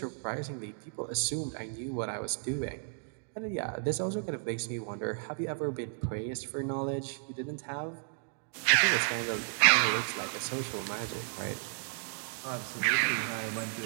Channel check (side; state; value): left; silent; digital silence